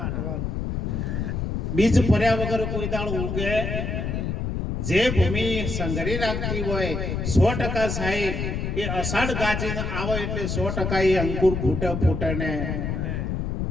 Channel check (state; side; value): noise; left; rumble, 2 dB below the sound